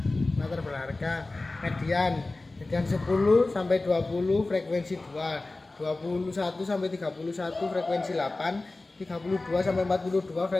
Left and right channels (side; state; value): right; quieter; 3.2 dB